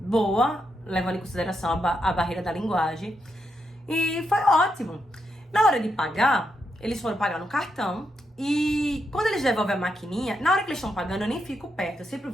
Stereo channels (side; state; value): both; normal; correlation 0.82